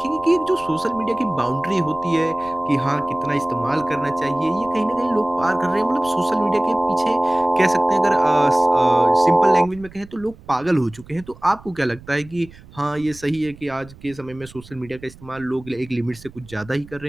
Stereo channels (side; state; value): right; noise; rumble, 21 dB below the sound